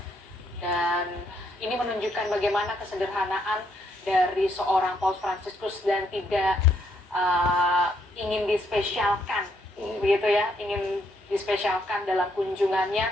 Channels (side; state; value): both; normal; correlation 0.73